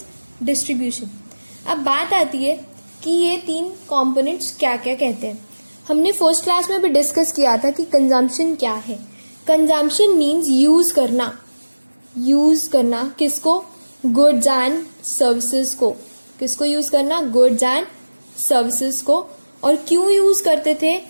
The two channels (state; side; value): inverted; both; correlation -1.00